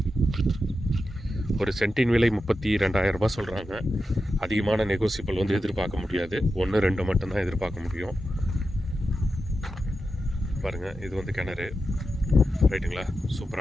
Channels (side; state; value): both; normal; correlation 0.90